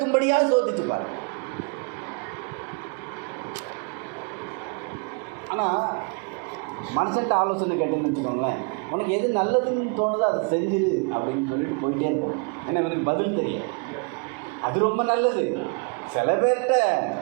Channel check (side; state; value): left; quieter; 34.6 dB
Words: சோதிச்சு பாரு. ஆனால் மனுஷன்ட்ட ஆலோசனை கேட்டேன்னு வச்சுக்கோங்களேன், உனக்கு எது நல்லதுன்னு தோணுதோ அதை செஞ்சிரு அப்படின்னு சொல்லிட்டு போயிட்டே இருப்போம். ஏன்னா எனக்கு பதில் தெரியும், அது ரொம்ப நல்லது. சில பேர்கிட்ட